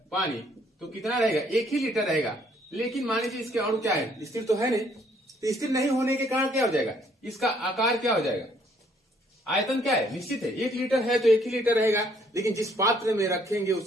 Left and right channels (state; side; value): normal; both; correlation 0.65